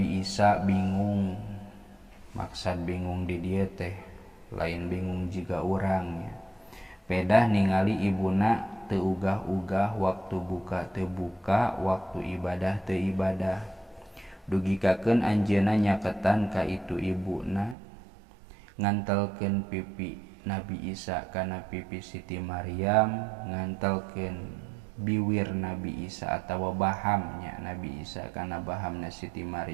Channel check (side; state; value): left; drops out; at 17.8 s